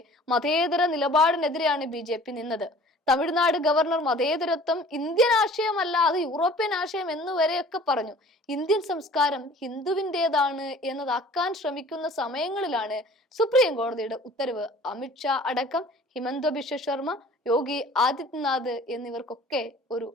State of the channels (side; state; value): both; normal; correlation 0.48